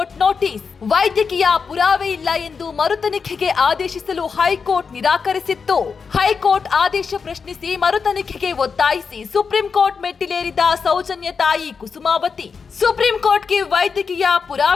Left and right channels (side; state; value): right; quieter; 5.6 dB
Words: ನೋಟಿಸ್. ವೈದ್ಯಕೀಯ ಪುರಾವೆ ಇಲ್ಲ ಎಂದು ಮರುತನಿಖೆಗೆ ಆದೇಶಿಸಲು ಹೈಕೋರ್ಟ್ ನಿರಾಕರಿಸಿತ್ತು. ಹೈಕೋರ್ಟ್ ಆದೇಶ ಪ್ರಶ್ನಿಸಿ ಮರುತನಿಖೆಗೆ ಒತ್ತಾಯಿಸಿ ಸುಪ್ರೀಂ ಕೋರ್ಟ್ ಮೆಟ್ಟಿಲೇರಿದ ಸೌಜನ್ಯ ತಾಯಿ ಕುಸುಮಾವತಿ. ಸುಪ್ರೀಂ ಕೋರ್ಟ್ಗೆ ವೈದ್ಯಕೀಯ